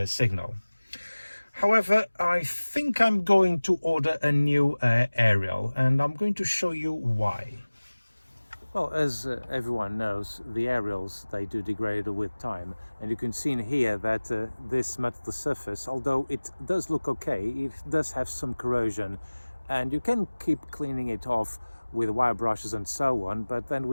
signal. However, I think I'm going to order a new aerial, and I'm going to show you why. Well, as everyone knows, the aerials, they do degrade with time, and you can see in here that this metal surface, although it does look okay, it does have some corrosion, and you can keep cleaning it off with wire brushes and so on, but then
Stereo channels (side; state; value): both; inverted; correlation -1.00